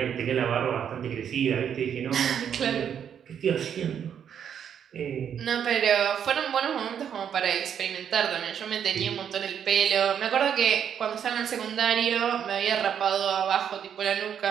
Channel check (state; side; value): quieter; left; 8.5 dB